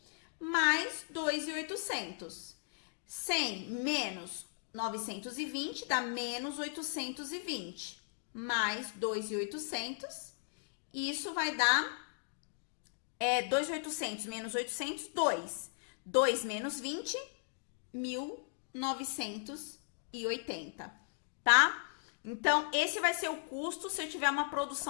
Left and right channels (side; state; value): right; silent; digital silence